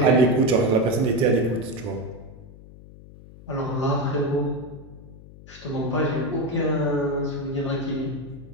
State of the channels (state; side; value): noise; left; hum, 19 dB below the sound